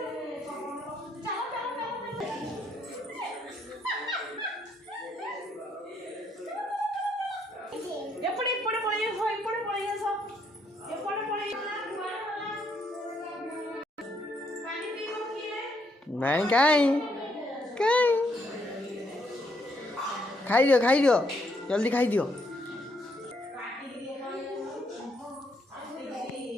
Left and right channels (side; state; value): both; normal; correlation 0.73